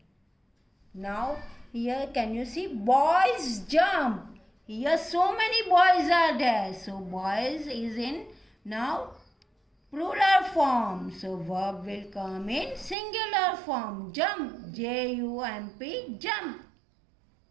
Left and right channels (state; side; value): drops out; left; at 13.0 s